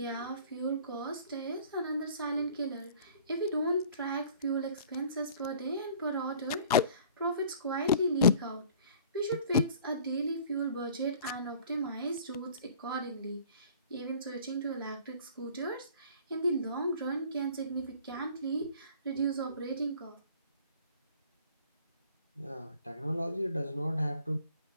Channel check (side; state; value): both; inverted; correlation -0.48